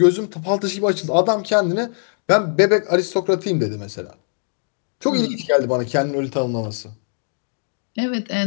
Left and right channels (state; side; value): silent; right; digital silence